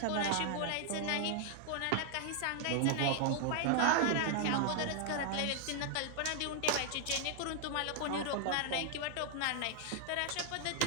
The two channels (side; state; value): both; different; correlation 0.00